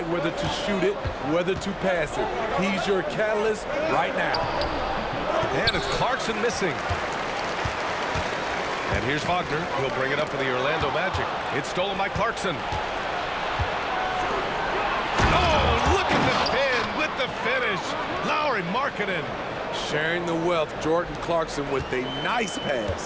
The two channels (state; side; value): identical; both; correlation 1.00